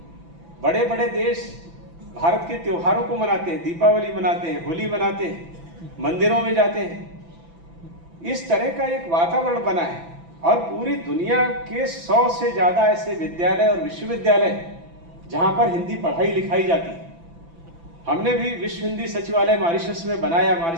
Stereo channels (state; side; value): late; left; 6.0 ms